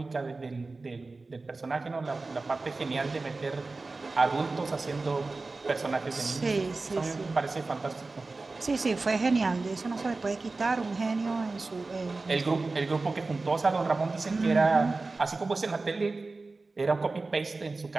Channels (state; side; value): quieter; left; 3.6 dB